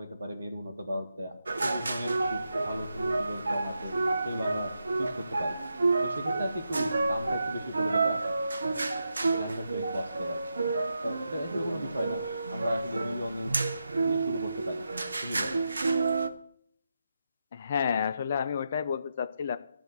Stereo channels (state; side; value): inverted; both; correlation -0.85